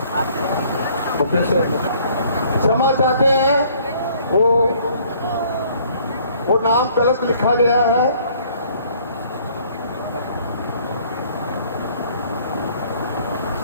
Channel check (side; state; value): both; inverted; correlation -0.60